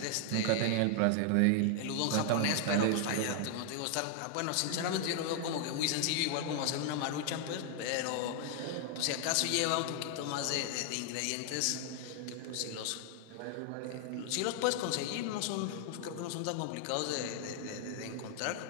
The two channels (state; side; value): different; both; correlation 0.00